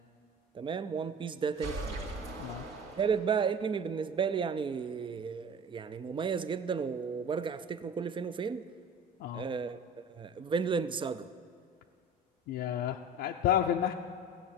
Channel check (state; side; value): normal; both; correlation 0.39